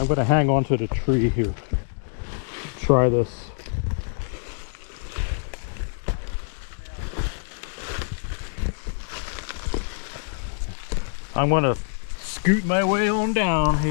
going to hang on to the tree here. Try this. I'm going to scoot my way on down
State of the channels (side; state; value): right; silent; digital silence